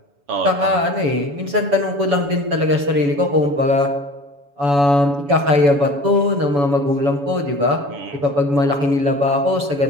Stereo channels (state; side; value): late; left; 7.0 ms